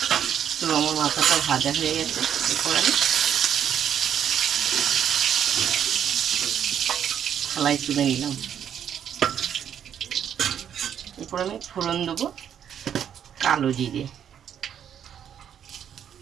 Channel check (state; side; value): quieter; left; 9.1 dB